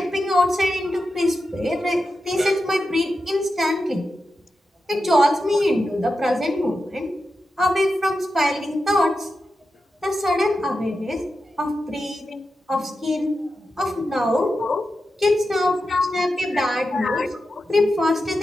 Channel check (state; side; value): normal; both; correlation 0.90